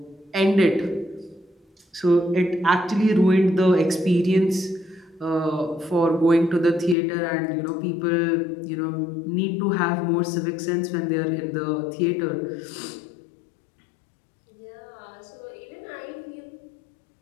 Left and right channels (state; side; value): drops out; right; at 7.0 s